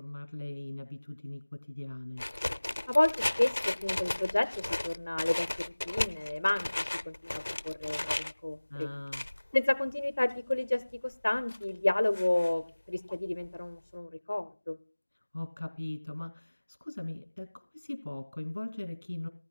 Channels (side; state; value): both; inverted; correlation -1.00